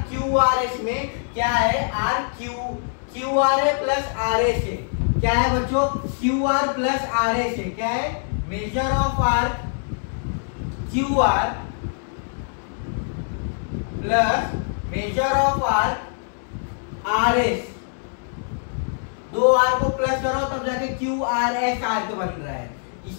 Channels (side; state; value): right; silent; digital silence